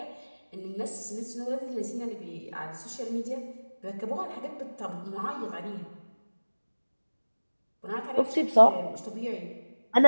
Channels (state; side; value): inverted; both; correlation -1.00